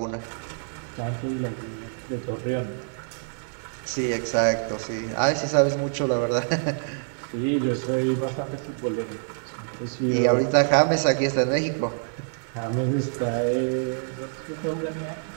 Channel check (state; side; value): silent; left; digital silence